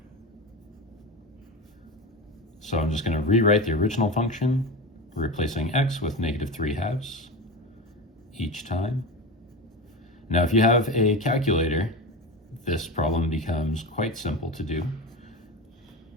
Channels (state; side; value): normal; both; correlation 0.25